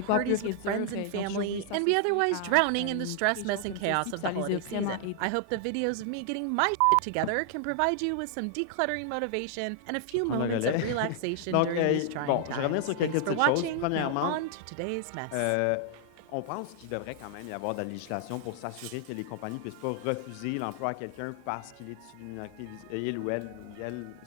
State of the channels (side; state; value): both; different; correlation 0.00